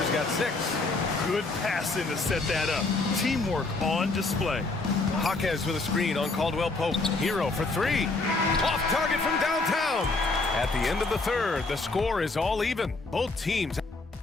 got 6. Good passing to set that up. Teamwork on display. Jaquez with a screen on Caldwell Pope. Hero for 3. Off target from downtown. At the end of the third, the score is all even. Both teams.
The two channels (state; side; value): quieter; right; 3.5 dB